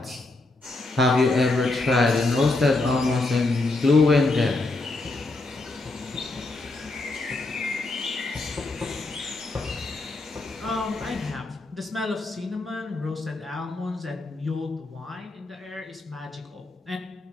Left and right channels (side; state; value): right; quieter; 3.1 dB